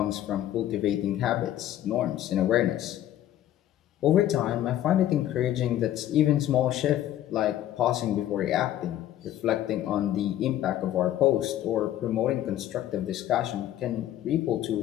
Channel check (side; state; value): right; quieter; 12.5 dB